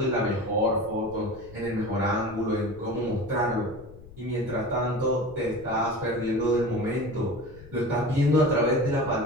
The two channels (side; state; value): left; noise; rumble, 19 dB below the sound